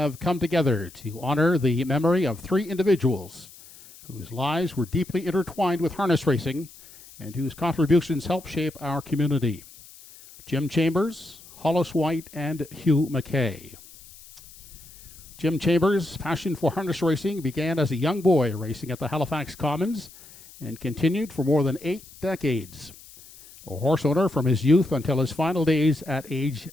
come together to honor the memory of 3 individuals whose lives were deeply intertwined with harness racing and whose contributions helped shape our community. Jim Chambers, Hollis White, and Hugh McKay. Jim Chambers' passion for harness racing began as a young boy racing at the Halifax Commons and continued for more than 8 decades. A horse owner from his youth until his final days at age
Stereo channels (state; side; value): noise; left; hiss, 21 dB below the sound